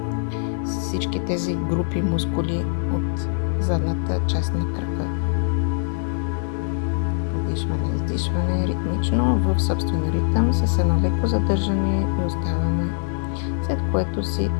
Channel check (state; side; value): silent; right; digital silence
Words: всички тези групи мускули от задната част на крака. Вдишване, издишване ритмично в собствен ритъм с едно леко задържане и оставаме, след което си